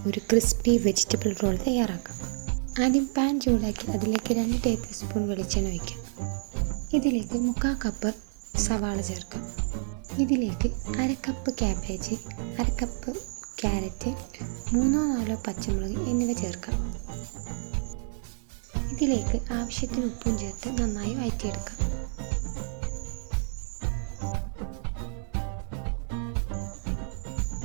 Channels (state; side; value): silent; left; 58 dB below the other